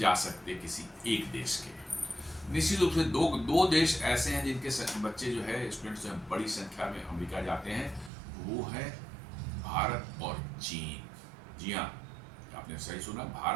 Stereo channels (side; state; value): left; drops out; at 8.1 s